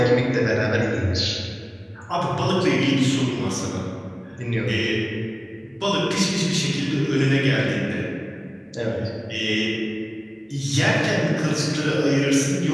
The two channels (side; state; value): both; identical; correlation 1.00